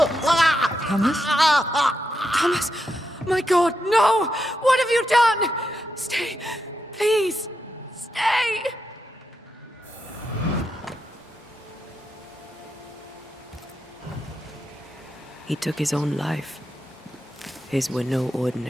Thomas? Thomas! My God, no! What have you done? Stay, please. Stay! He took his own life. His were no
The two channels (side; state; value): both; normal; correlation 0.84